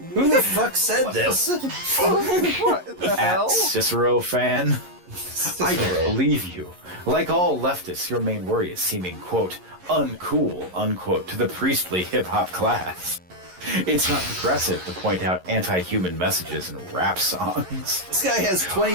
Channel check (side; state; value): left; late; 11 ms